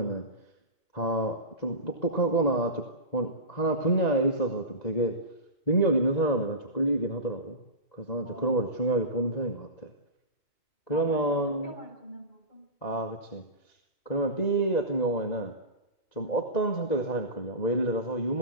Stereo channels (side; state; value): right; late; 2.0 ms